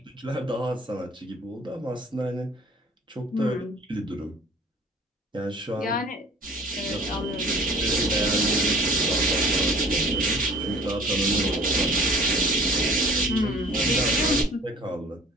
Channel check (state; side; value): normal; both; correlation 0.49